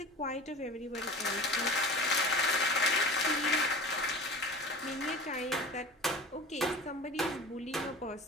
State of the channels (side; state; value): both; normal; correlation 0.36